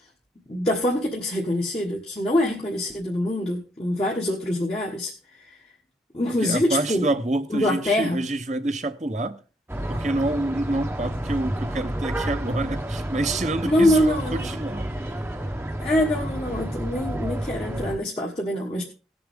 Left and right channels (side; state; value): both; normal; correlation 0.73